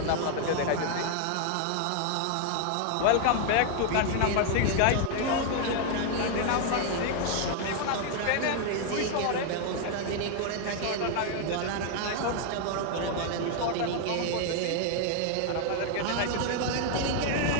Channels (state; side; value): different; both; correlation 0.00